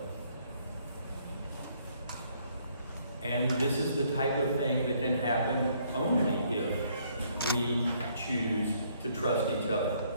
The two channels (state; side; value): inverted; both; correlation -0.67